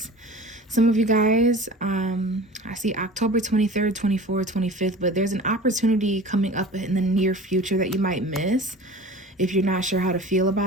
Some of you guys, I see October 23rd, 24th, 25th, but there's an opportunity coming up in the near future that you might miss if you're not sure how to feel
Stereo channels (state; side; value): normal; both; correlation 0.39